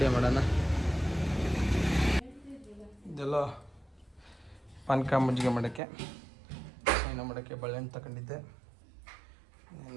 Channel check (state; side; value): drops out; left; at 5.8 s